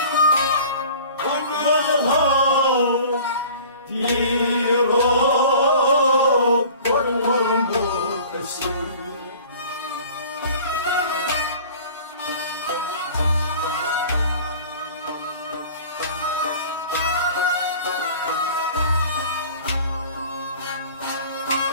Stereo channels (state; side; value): inverted; both; correlation -0.45